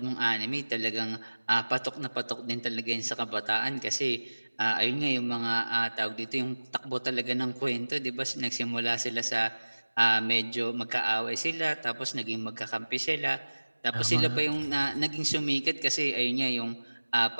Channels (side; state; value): both; inverted; correlation -1.00